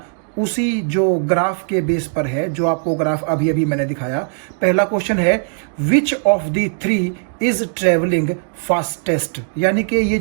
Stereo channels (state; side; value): silent; left; 67 dB below the other